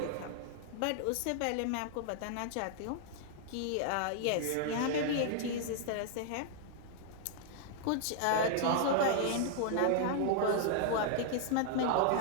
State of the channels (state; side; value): different; both; correlation -0.01